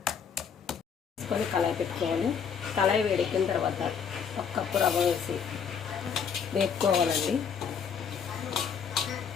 తీసుకొని కళాయి పెట్టుకోవాలి. కళాయి వేడెక్కిన తర్వాత 1 కప్పు రవ్వ వేసి వేపుకోవాలండి.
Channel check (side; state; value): right; quieter; 6.9 dB